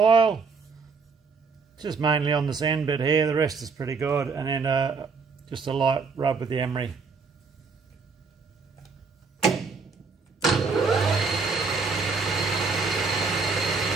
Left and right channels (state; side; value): quieter; left; 4.9 dB